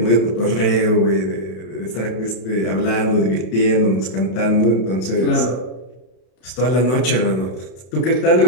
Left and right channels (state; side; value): late; right; 32 ms